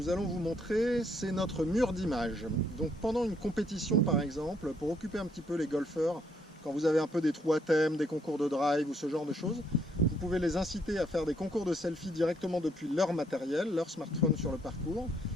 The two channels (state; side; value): normal; both; correlation 0.70